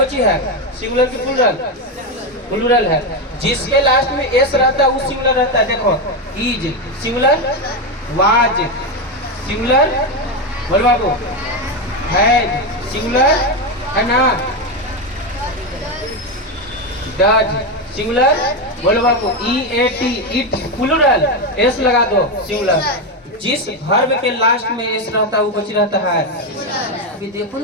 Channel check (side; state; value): both; normal; correlation 0.10